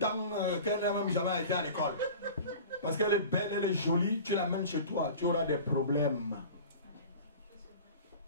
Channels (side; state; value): both; inverted; correlation -0.39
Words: qu'elle n'a même jamais été à l'école. Parce qu'elle est belle, elle est jolie, tu l'amènes chez toi, tu auras des problèmes.